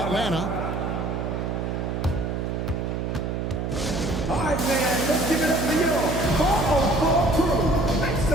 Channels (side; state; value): right; noise; hum, 2 dB below the sound